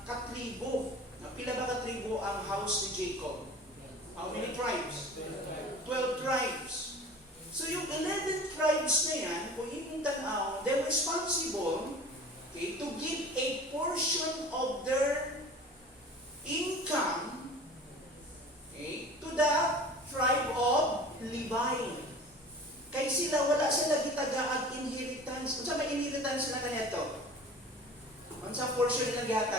katribo. Pila ba katribo ang house ni Jacob? How many tribes? 12 tribes. So yung 11 tribes na yan, kung imong tanaw, they're responsible, okay, to give a portion of their income, okay, to the tribe of Levi. Kay sila, wala sila gitagaag inheritance. Unsa may inheritance na kanyato? Unsa portion nila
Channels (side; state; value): both; normal; correlation 0.41